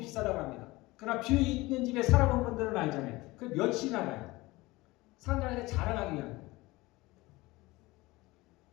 비싸다고 합니다. 그러나 뷰 있는 집에 살아본 분들은 알잖아요. 그 며칠이나 가요. 사람들한테 자랑하기 위한 거예요.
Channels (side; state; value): right; quieter; 21.0 dB